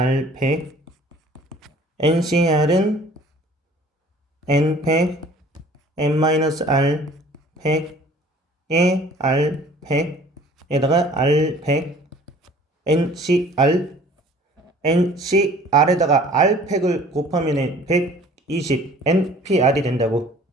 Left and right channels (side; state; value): both; normal; correlation 0.50